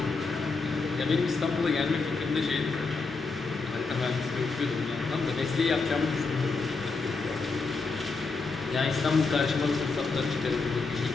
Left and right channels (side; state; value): right; quieter; 4.2 dB